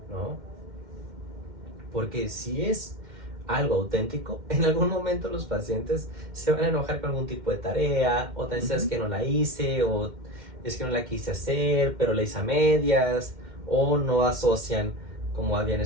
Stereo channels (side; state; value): left; late; 2.1 ms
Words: ¿no? Porque si es algo auténtico, en algún momento los pacientes se van a enojar con algún tipo de tarea, o tal vez es que no la hice, o es que no la quise hacer, pero la hice a medias, o no asocian como habían